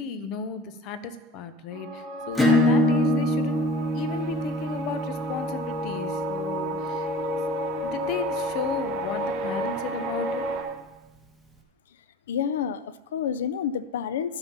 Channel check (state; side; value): normal; both; correlation 0.40